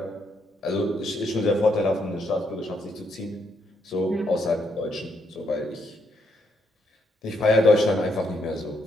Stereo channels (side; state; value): both; normal; correlation 0.76